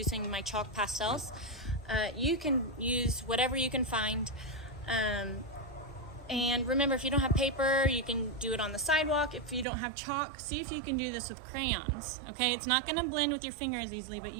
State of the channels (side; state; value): left; drops out; at 9.7 s